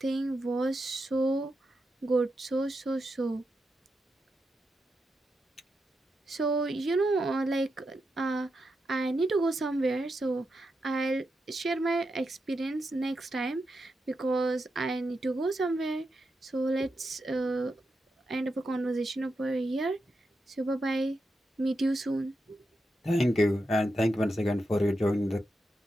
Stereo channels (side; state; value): both; normal; correlation 0.86